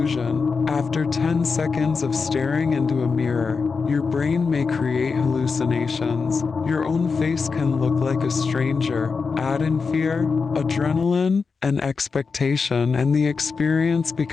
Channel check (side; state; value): right; quieter; 5.0 dB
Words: After 10 seconds of staring into a mirror, your brain may create hallucinations. Your own face can look like a stranger. Add in fear, adrenaline, and expectation, and the experience